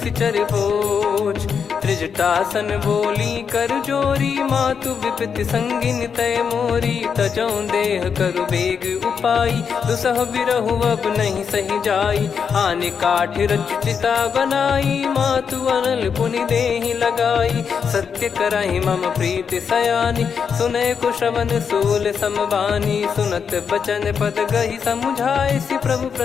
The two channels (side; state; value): right; quieter; 6.6 dB